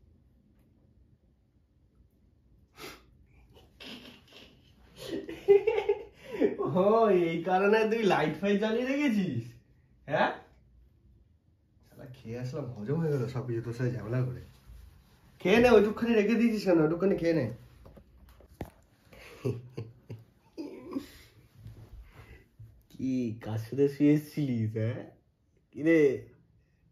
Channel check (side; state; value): both; identical; correlation 1.00